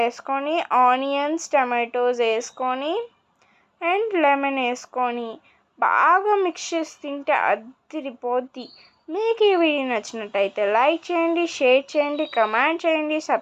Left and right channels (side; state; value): both; identical; correlation 1.00